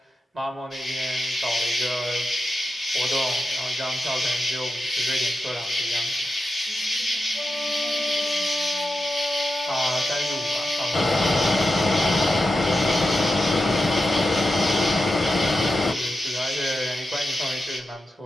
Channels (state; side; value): normal; both; correlation 0.90